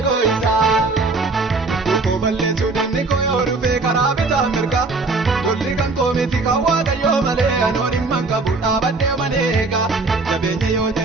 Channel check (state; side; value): quieter; left; 3.7 dB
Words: koo isa koo balleessuu dinni koo yoo dhufee karaa bitaa mirga golli kan koo miti kan waaqayyoo malee anoon himman qabu dhaabadhee maneega jabeenya yoo